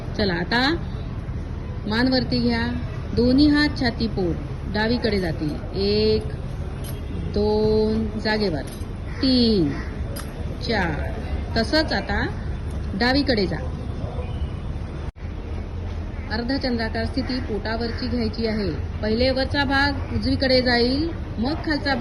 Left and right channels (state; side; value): identical; both; correlation 1.00